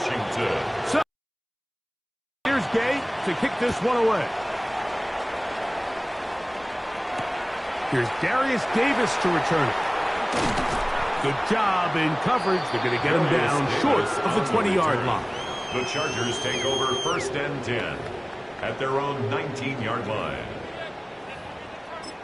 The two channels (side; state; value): both; identical; correlation 1.00